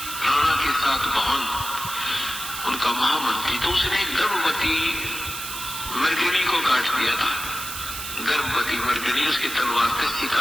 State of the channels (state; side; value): noise; right; hiss, 7 dB below the sound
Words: राणा के साथ भवन, उनका महामंत्री, तो उसने गर्भवती मर्गिनी को काट दिया था। गर्भवती मर्गिनी उसकी तलवार से